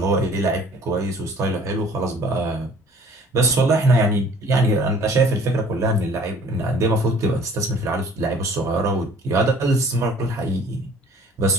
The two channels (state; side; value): normal; both; correlation 0.52